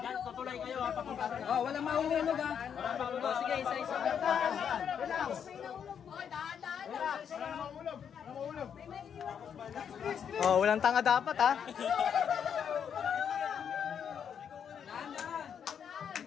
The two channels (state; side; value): quieter; right; 7.9 dB